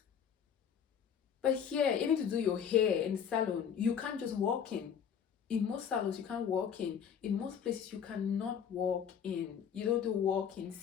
But here, even to do your hair in the salon, you can't just walk in. In most salons, you can't walk in. In most places, you cannot walk in. You don't do walk-ins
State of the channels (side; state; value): right; quieter; 7.9 dB